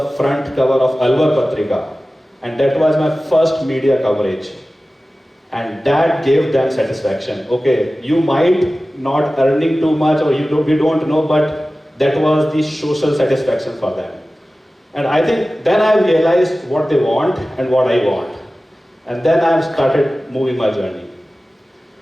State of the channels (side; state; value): both; normal; correlation 0.96